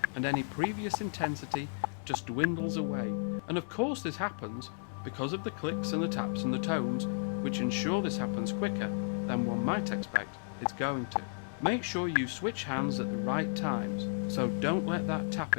and any previous intensity just dwindles away. And of course this happens because of the clicks and the taps and the tones, which ensure this happens quicker than one might expect it's going to. Make sure you switch hands at the right times, so don't let that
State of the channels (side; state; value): right; silent; digital silence